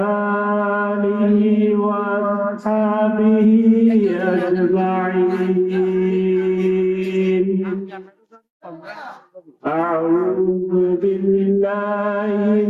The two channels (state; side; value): identical; both; correlation 1.00